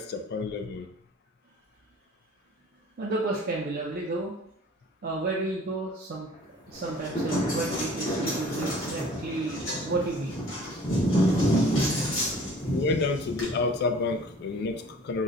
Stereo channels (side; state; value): both; normal; correlation 0.48